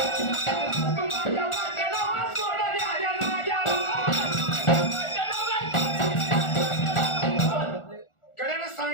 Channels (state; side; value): late; right; 1.4 ms